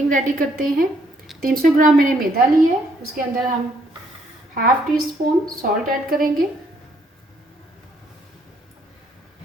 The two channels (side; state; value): both; normal; correlation 0.69